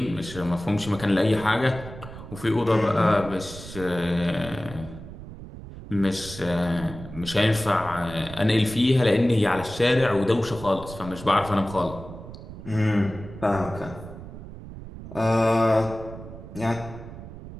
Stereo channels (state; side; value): noise; right; rumble, 13 dB below the sound